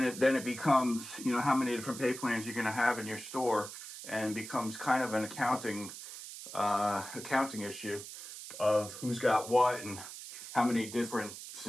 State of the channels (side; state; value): right; noise; hiss, 11 dB below the sound